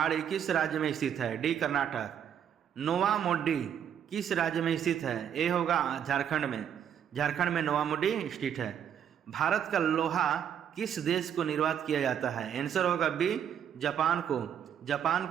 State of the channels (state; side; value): quieter; left; 8.9 dB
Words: किस राज्य में स्थित है? डी, कर्नाटक। नोवा मोडी किस राज्य में स्थित है? ए होगा झारखंड में। झारखंड में नोवा मोडी स्थित है। भारत का लोहा किस देश को निर्यात किया जाता है? आंसर होगा बी, जापान को। जापान